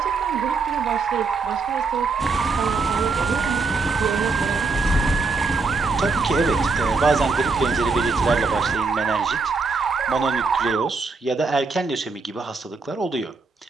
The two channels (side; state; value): left; quieter; 4.3 dB